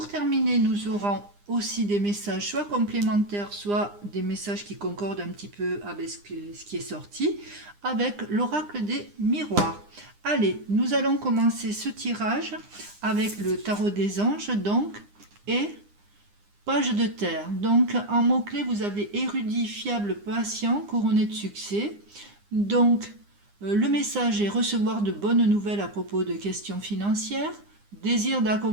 terminer, nous aurons aussi des messages soit complémentaires, soit des messages qui concordent un petit peu avec ce qui est sorti, avec l'oracle des miroirs. Allez, nous allons commencer ce tirage avec le tarot des anges, donc, et page de terre. Donc, en mots-clés, vous avez érudit, fiable, patient, couronné de succès. Donc, le message est recevoir de bonnes nouvelles à propos de questions financières, désir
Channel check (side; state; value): left; late; 9.8 ms